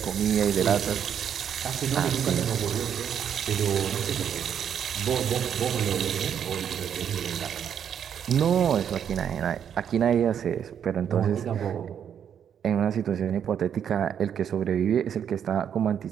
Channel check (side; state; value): left; quieter; 8.6 dB